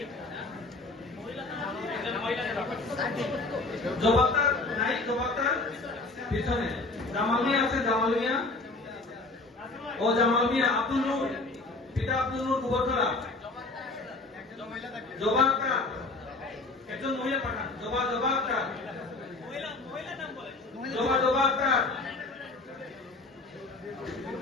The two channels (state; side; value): quieter; right; 3.3 dB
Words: জবাবদার নাই, জবাবদার পিছনে। জামাল মিয়া আছে, জামাল মিয়া ও জামাল মিয়া। আব্দুল নূর, পিতা আব্দুল নূর, গোবরখোলা। জবা আক্তার, একজন মহিলা পাঠান। জবা আক্তার, জবা আক্তার।